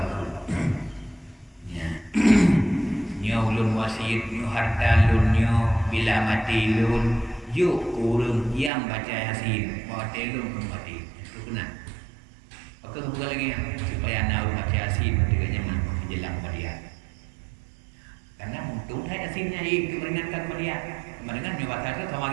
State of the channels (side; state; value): left; drops out; at 8.7 s